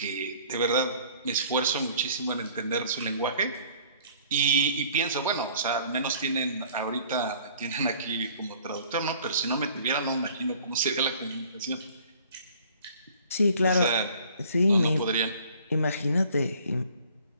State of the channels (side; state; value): both; inverted; correlation -0.54